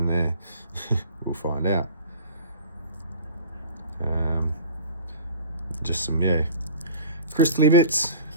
there. We'll find out. Just some, yeah, crystally bits.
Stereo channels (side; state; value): both; inverted; correlation -0.42